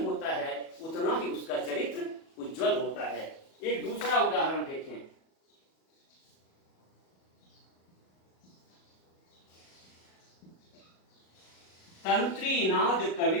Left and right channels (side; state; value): right; late; 37 ms